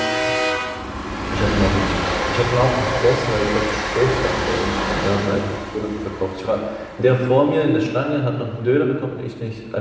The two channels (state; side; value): identical; both; correlation 1.00